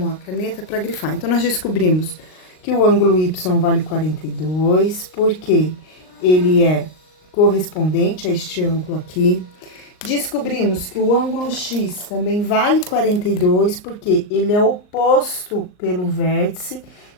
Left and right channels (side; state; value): right; late; 38 ms